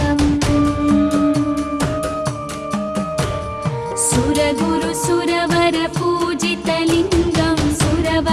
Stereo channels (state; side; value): identical; both; correlation 1.00